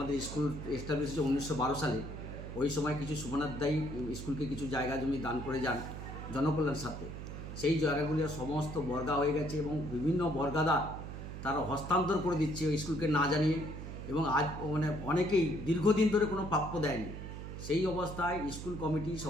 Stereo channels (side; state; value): right; noise; hum, 8 dB below the sound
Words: স্কুল এস্টাবলিশ হয়েছে 1912 সালে। ওই সময় কিছু সুমনাথ দায়ী স্কুলকে কিছু জায়গা জমি দান করে যান জনকল্যাণ স্বার্থে। সেই জায়গাগুলি সমস্ত বর্গা হয়ে গেছে এবং বিভিন্ন বর্গাদার তারা হস্তান্তর করে দিচ্ছে ওই স্কুলকে না জানিয়ে, এবং আজ মানে অনেকেই দীর্ঘদিন ধরে কোনো প্রাপ্য দেয়নি। সেই অবস্থায় স্কুল কমিটি